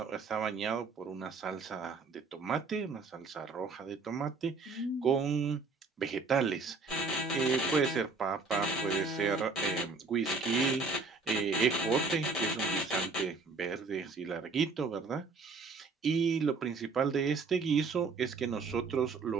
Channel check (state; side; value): quieter; left; 4.2 dB